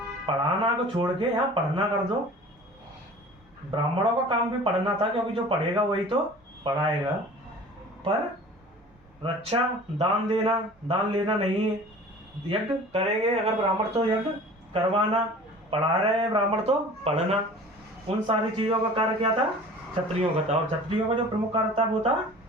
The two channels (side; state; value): both; normal; correlation 0.43